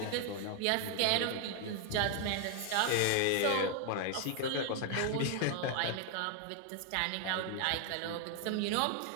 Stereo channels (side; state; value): both; different; correlation 0.00